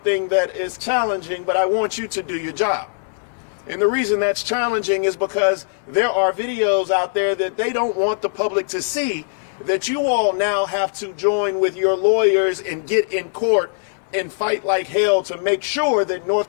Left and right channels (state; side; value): silent; right; 65 dB below the other